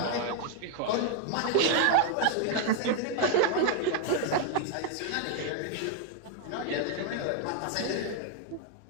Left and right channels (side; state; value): both; different; correlation 0.00